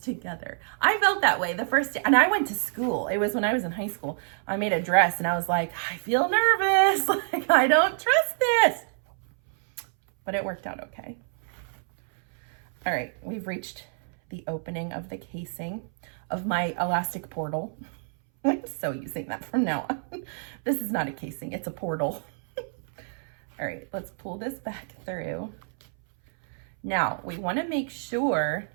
together. I felt that way the first day, and I went to school. It was when I was in high school. I made a dress and I was like, I feel nervous. Like, I don't trust this. But it worked out okay. All right, we've reached the opening of the casing of my elastic portal. I'm so using that from now on. This is not a casing, it's a portal. All right, let's pull this back through. Now, we want to make sure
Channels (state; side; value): silent; left; 60 dB below the other